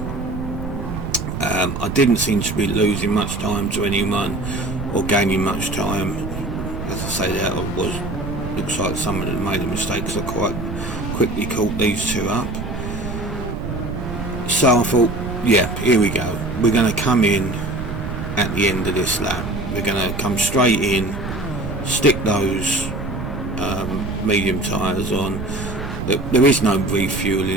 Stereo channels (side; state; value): right; noise; rumble, 7 dB below the sound